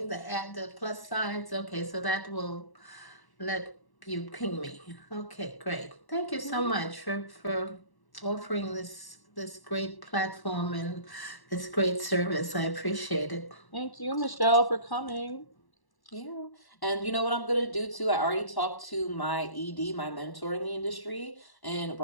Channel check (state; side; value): late; right; 1.1 ms